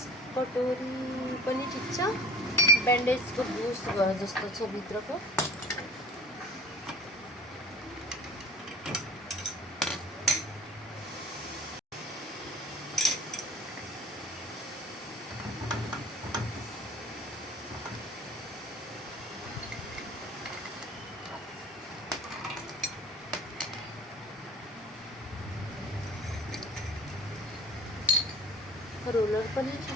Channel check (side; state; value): both; normal; correlation 0.43